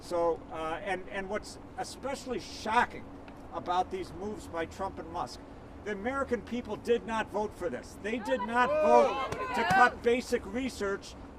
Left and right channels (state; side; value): identical; both; correlation 1.00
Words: So, and what's especially shocking about these moves by Trump and Musk, the American people did not vote for this. They did not vote to cut basic research